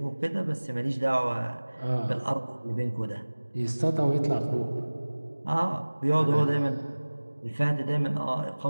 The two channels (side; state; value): both; inverted; correlation -1.00